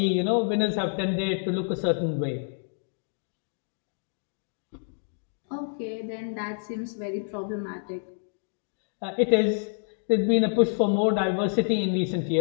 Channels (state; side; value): silent; right; digital silence